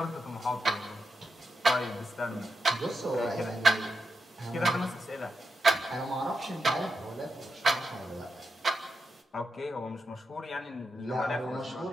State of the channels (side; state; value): both; normal; correlation 0.86